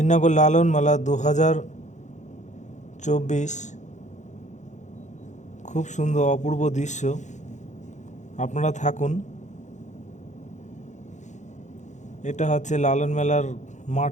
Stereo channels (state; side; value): late; right; 0.35 ms